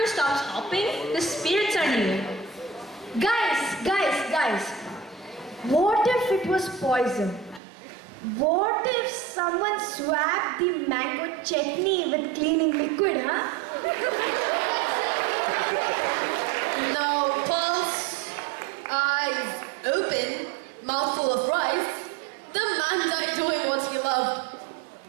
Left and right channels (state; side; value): drops out; left; at 7.6 s